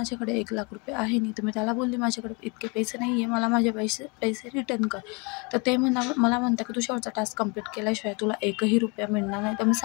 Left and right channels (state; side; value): quieter; right; 30.6 dB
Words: 1,00,000 रुपये आहे नाही. तर मी त्याला बोलली माझ्याकडे इतके पैसे नाही आहे, मला माझे पैसे रिटर्न कर. तर ते मला म्हणतं की तू शेवटचा टास्क कंप्लीट केल्याशिवाय तुला एकही रुपया मिळणार नाही. तर मी